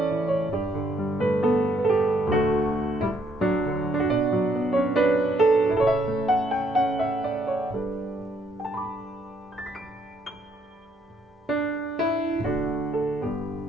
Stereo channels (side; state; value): both; normal; correlation 0.70